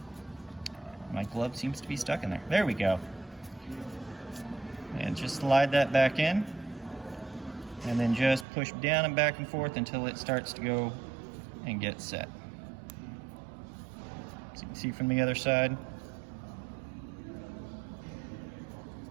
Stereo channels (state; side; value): drops out; left; at 8.5 s